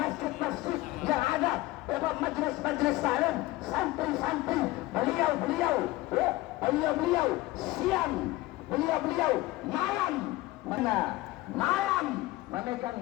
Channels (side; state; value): right; quieter; 18.6 dB